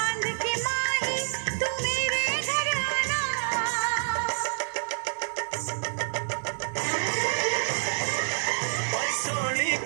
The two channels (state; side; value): silent; left; digital silence